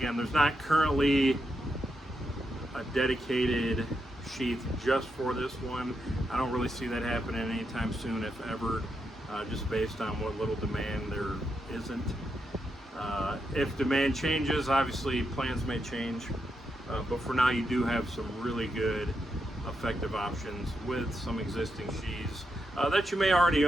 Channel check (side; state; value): both; normal; correlation 0.84